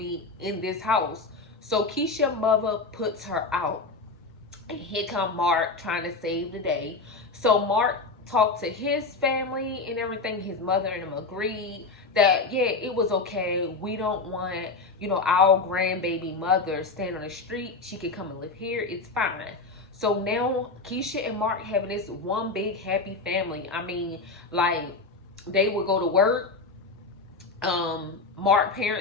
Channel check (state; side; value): quieter; right; 3.8 dB